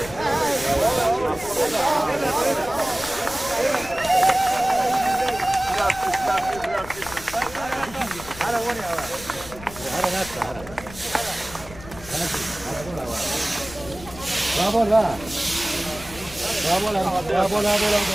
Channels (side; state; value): left; noise; rumble, 16 dB below the sound